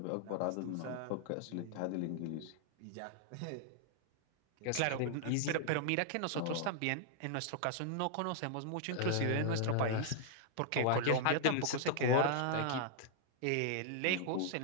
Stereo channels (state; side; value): different; both; correlation -0.01